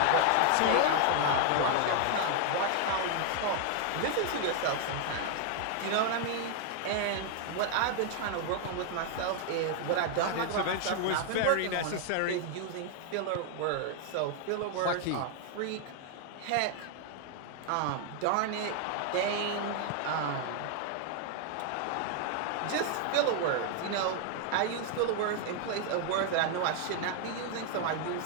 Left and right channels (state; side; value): different; both; correlation 0.00